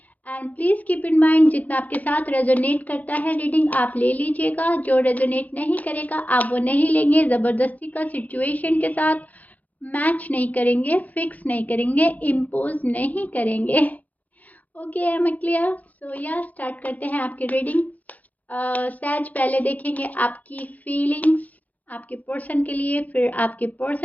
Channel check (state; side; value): late; right; 0.078 ms